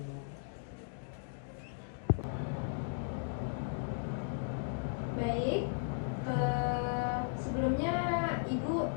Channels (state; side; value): silent; right; digital silence